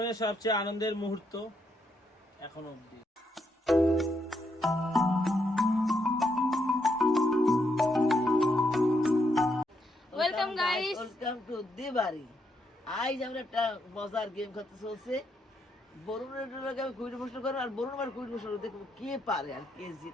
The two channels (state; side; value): normal; both; correlation 0.78